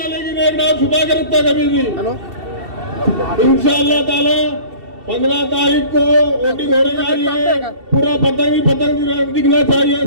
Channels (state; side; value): late; left; 2.7 ms